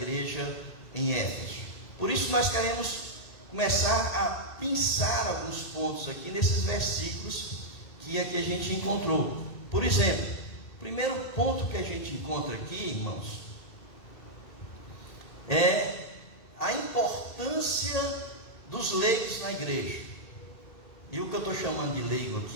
em Éfeso. Por isso nós queremos começar a pensar alguns pontos aqui nesses versículos que aqui a gente encontrou. Por exemplo, o primeiro ponto que a gente encontra aqui, irmãos, é a importância dos leigos na igreja. E o que eu estou chamando de leigo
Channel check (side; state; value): right; late; 1.8 ms